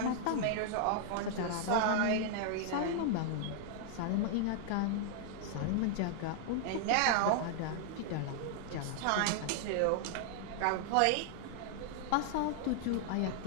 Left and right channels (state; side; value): different; both; correlation -0.01